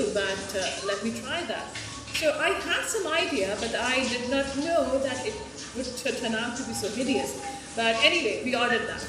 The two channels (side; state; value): both; identical; correlation 1.00